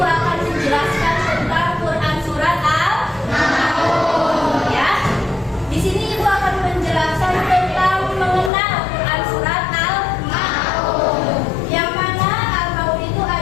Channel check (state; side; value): drops out; right; at 8.5 s